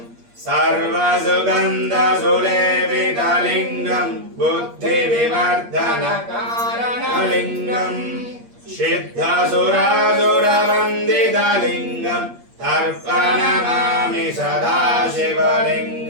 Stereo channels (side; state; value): left; late; 8.5 ms